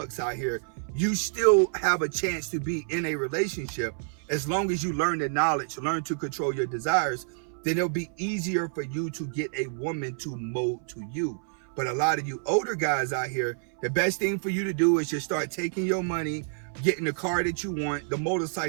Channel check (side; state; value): left; silent; 59 dB below the other